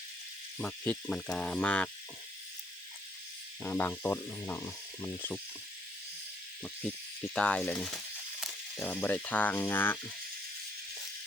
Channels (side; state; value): both; normal; correlation 0.68